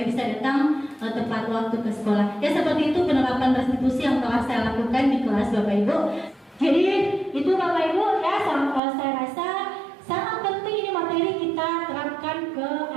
bisa datang tepat waktu ke sekolah. Ya, seperti itu penerapan restitusi yang telah saya lakukan di kelas Bapak Ibu. Jadi itu Bapak Ibu ya, saya rasa sangat penting ini materi kita terapkan ke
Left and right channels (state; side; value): drops out; left; at 8.8 s